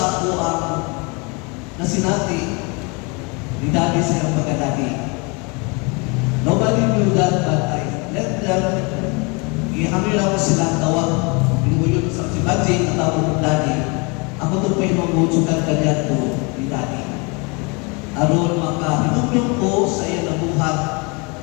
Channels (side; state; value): right; quieter; 30.2 dB